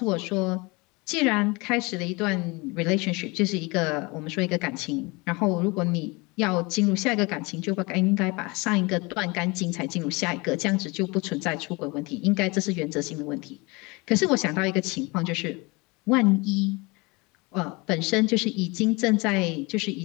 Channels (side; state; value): right; quieter; 26.2 dB